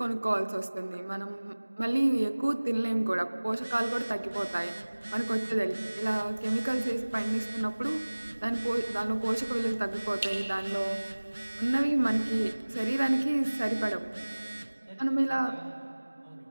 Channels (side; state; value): both; inverted; correlation -1.00